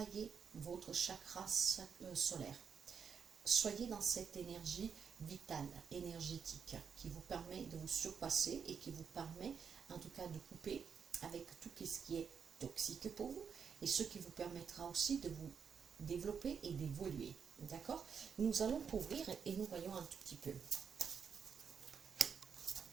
votre chakra solaire. Soyez dans cette énergie vitale, énergétique, qui vous permet de vous surpasser et qui vous permet en tout cas de couper avec tout ce qui est toxique pour vous et ce qui vous permettra aussi de vous développer et d'évoluer. D'accord? Nous allons couvrir et nous voyons un tout petit peu.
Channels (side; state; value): left; quieter; 6.7 dB